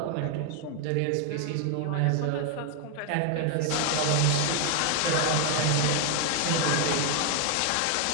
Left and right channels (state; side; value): different; both; correlation 0.00